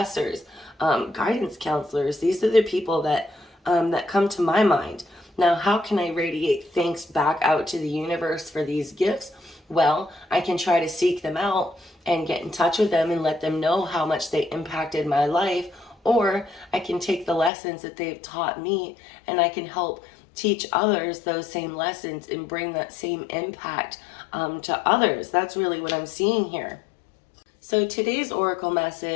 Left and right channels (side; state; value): right; drops out; at 17.5 s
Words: guidance counselors. These are the people that come to my mind. Now, how can I radiate thanks back out to the universe for these gifts? Well, I can try to seek them out and get in touch with them and let them know how much they impacted my life, or I can take the lessons that they've taught me and I can help teach others those same lessons and bring that same impact to others. That's really what I'm seeing here. So today's oracle